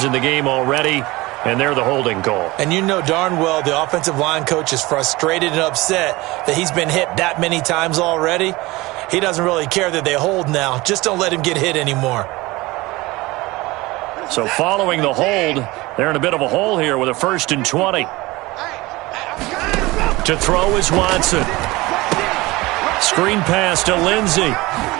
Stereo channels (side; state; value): left; quieter; 21.1 dB